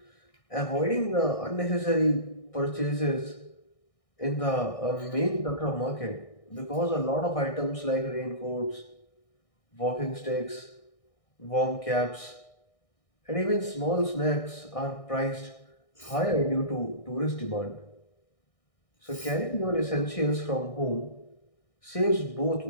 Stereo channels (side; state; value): right; late; 1.6 ms